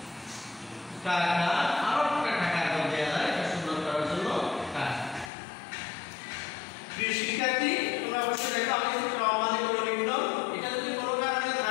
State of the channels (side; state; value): right; drops out; at 5.3 s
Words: টাকা আরো একটা টাকা দেওয়া যায় এটা সুন্দর করার জন্য টাকা। প্রিয় শিক্ষার্থী তোমরা অবশ্যই দেখো আমি একটু ক্রম মানে করে লিখলাম। এটা যদি কোনো কারণে